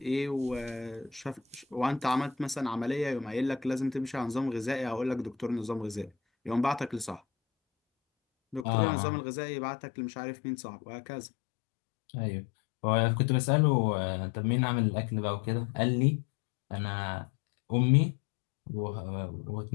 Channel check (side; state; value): right; drops out; at 8.7 s